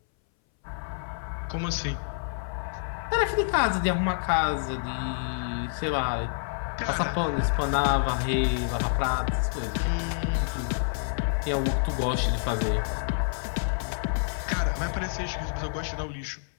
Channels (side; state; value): right; silent; 59 dB below the other